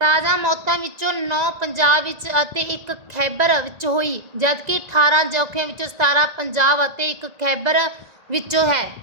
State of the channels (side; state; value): left; late; 1.9 ms